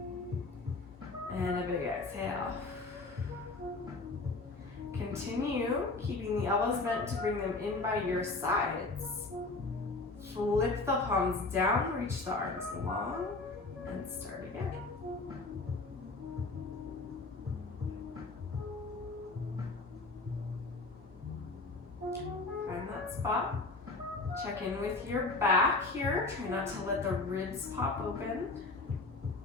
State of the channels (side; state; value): right; quieter; 3.4 dB